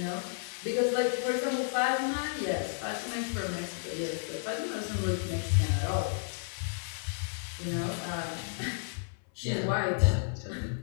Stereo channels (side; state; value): right; silent; 56 dB below the other